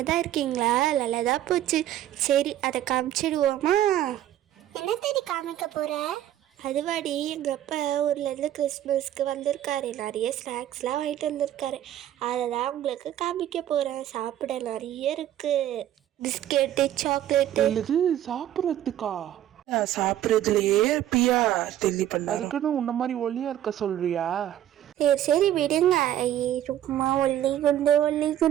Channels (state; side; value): quieter; left; 12.1 dB